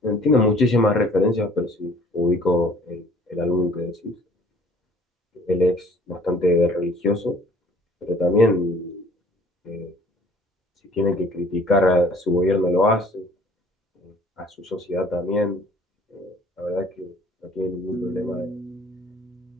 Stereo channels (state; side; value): normal; both; correlation 0.54